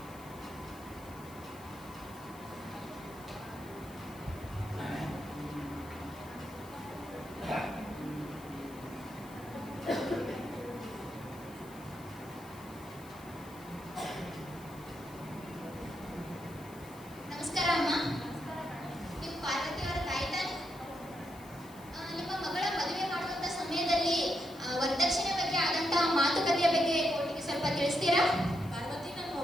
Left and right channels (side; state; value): left; noise; hiss, 21 dB below the sound